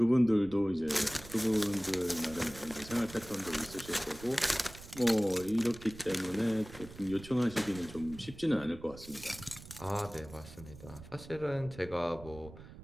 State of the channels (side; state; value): right; noise; rumble, 16 dB below the sound